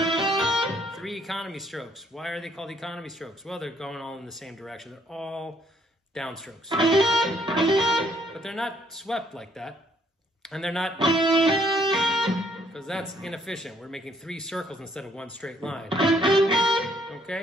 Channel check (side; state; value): both; normal; correlation 0.66